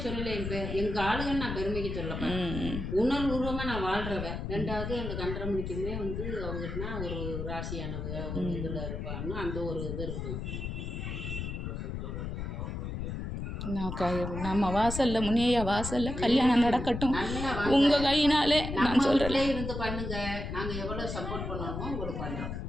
சொல்லலை. எங்கள் ஆளுங்கன்னு நான் பெருமைக்கு சொல்லப்பேன். உணர்வுபூர்வமாக நான் வாழ்கிறவ. ரெண்டாவது அந்த கண்டரமணிக்குமே வந்து அவங்கன்னா ஒரு ராசியானவங்க ஒரு இதில் இருப்பான்னு அந்த ஒரு இது இருக்கும். நம்ம வாசல்ல முனியா வாசல்ல கல்யாணம் நடக்கட்டும் உங்க கையினாலே. நான் சொல்றேன் இருந்து பண்ணுங்க, நாங்க எவ்வளவு சப்போர்ட் பண்ணணுமோ உங்களுக்கு பண்றோம்.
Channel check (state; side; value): noise; left; rumble, 5 dB below the sound